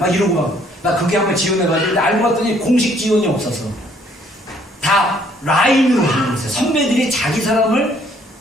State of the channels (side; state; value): both; normal; correlation 0.64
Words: 이러고 막 나 그게 한번 지원해가지고 알고 봤더니 공식 지원이 없어서 다 라인으로 하는 거였어요. 선배들이 자기 사람을